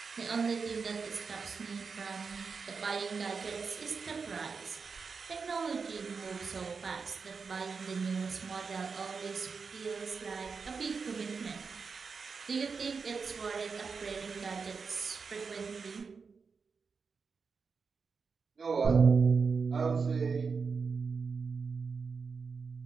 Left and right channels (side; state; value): left; quieter; 5.1 dB